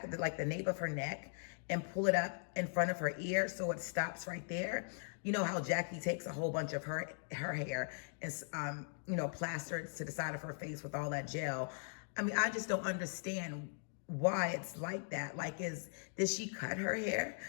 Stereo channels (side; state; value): right; silent; digital silence